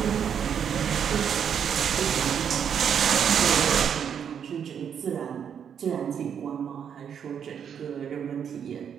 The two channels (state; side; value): quieter; left; 8.0 dB